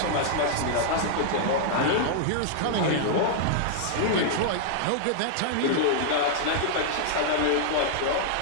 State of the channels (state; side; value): different; both; correlation -0.01